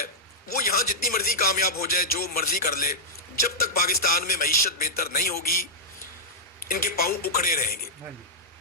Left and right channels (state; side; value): normal; both; correlation -0.08